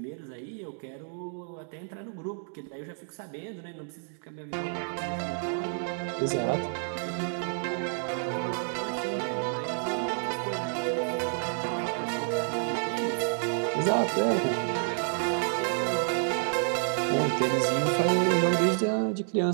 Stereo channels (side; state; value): left; silent; digital silence